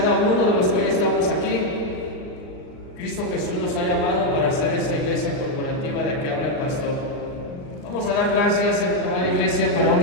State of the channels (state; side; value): late; right; 39 ms